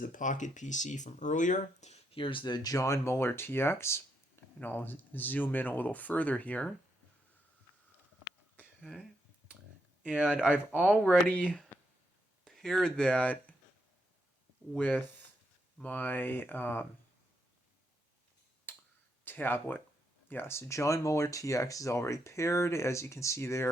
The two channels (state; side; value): normal; both; correlation 0.80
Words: the Pocket PC from earlier. Here's the John Muller TX, and I'll zoom in a little further here. Okay. And I've already paired that with my tablet. Yeah, so John Muller TX is already paired, as you can see